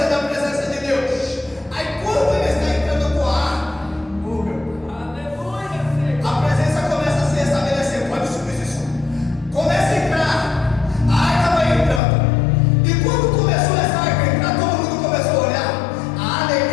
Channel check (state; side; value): drops out; right; at 12.0 s